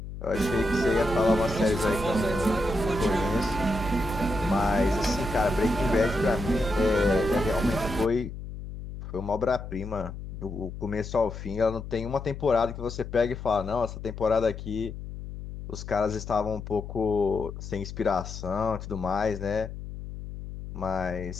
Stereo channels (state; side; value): noise; left; hum, 10 dB below the sound